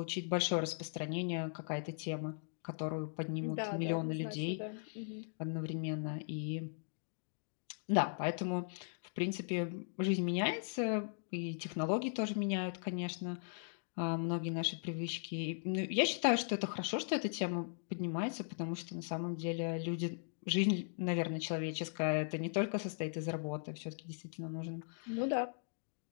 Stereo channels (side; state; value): right; silent; digital silence